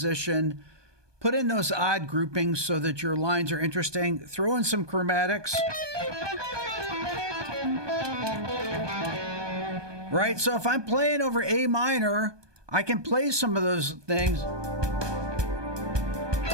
put in those odd groupings so that your lines are interesting, throw in some chromatics. Right? So if I'm playing over A minor, I can play some of those things.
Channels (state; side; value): late; left; 1.2 ms